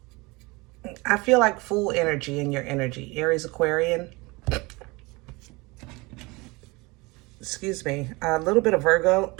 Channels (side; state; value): left; quieter; 24.5 dB